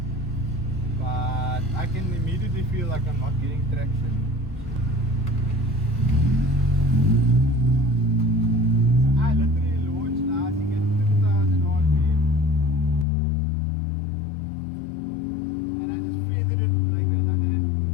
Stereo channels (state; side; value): drops out; right; at 13.1 s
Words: But I can immediately feel like I'm not getting traction. So I literally launched now, I think at 2000 RPM. And I just feathered it like that, I didn't